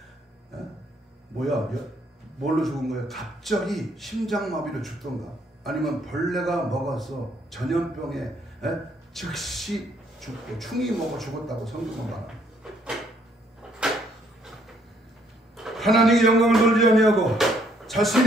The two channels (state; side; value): normal; both; correlation 0.68